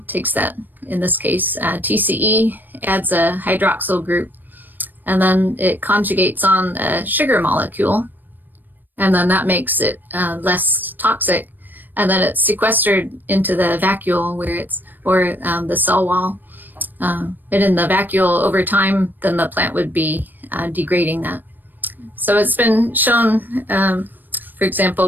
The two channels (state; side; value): late; left; 0.090 ms